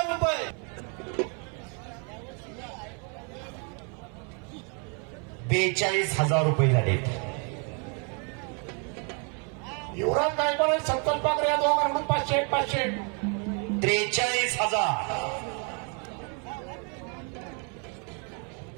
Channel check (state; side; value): quieter; left; 36.7 dB